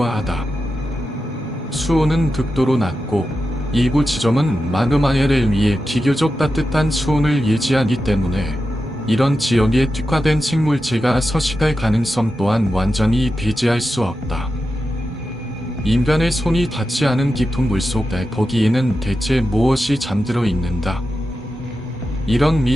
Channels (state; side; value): normal; both; correlation 0.90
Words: 수온은 극도로 낮고 일부 지점은 마그마해를 위해 비교적 따뜻한 수온을 유지하기 때문에 이런 지역에 특화된 생물체가 서식할 가능성 또한 완전히 배제할 수 없다. 인간의 손이 닿지 않은 깊은 물속에 거기에는 대체 무엇이 잠들어 있는가? 이런